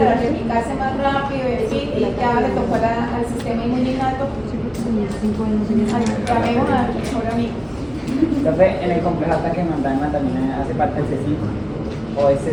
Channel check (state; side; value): identical; both; correlation 1.00